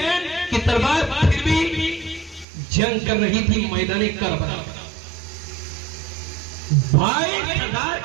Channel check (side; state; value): left; drops out; at 2.5 s